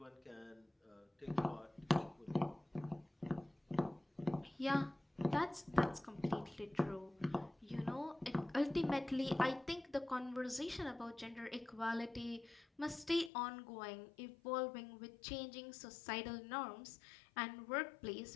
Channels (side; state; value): right; drops out; at 13.3 s